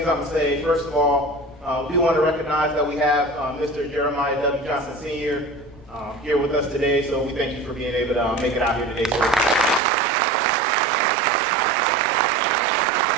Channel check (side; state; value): left; drops out; at 9.8 s